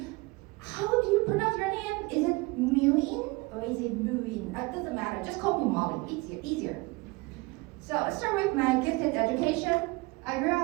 how do you pronounce your name? Is it Mu-Yin or is it Mu-Yin? It doesn't matter. Just call me Molly. Easier. So let's start with my gifted education. I grew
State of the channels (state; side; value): quieter; left; 24.6 dB